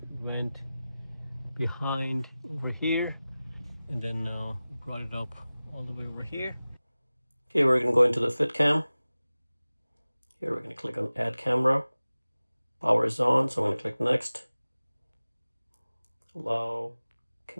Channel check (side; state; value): both; inverted; correlation -0.97